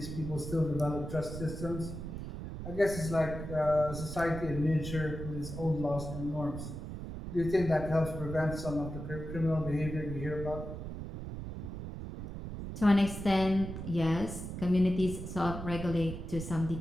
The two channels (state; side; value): noise; right; rumble, 8 dB below the sound